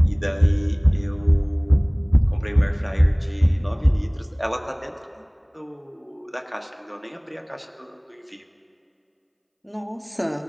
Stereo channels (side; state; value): both; identical; correlation 1.00